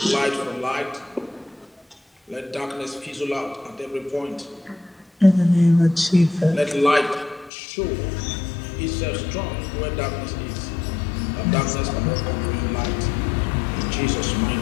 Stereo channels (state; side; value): drops out; right; at 7.5 s